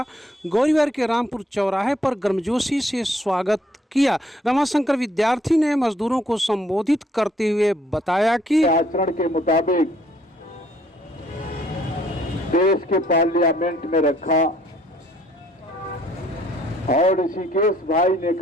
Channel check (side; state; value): both; normal; correlation 0.64